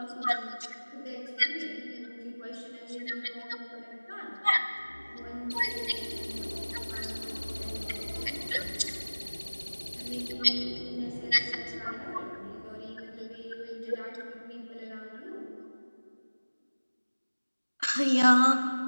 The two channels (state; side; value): inverted; both; correlation -1.00